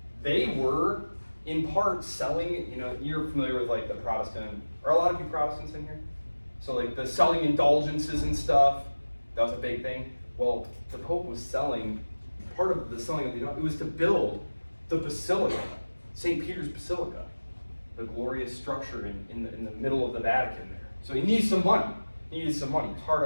they were in part selling, you're familiar with like the Protestant, are a lot of you Protestants in here? So like the selling indulgences and stuff, that was a big thing. Well, the Pope was selling, part of the selling of it was to build the Basilica, St. Peter's Basilica, the glorious structure in the middle of the Vatican there. So he needs some money. He needed some money. He's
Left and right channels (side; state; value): both; inverted; correlation -1.00